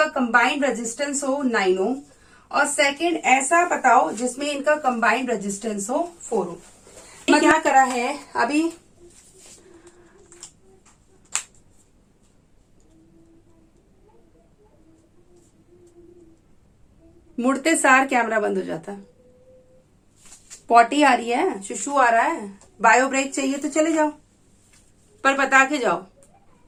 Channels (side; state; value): both; identical; correlation 1.00